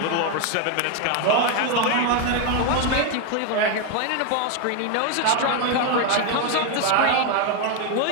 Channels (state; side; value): different; both; correlation 0.01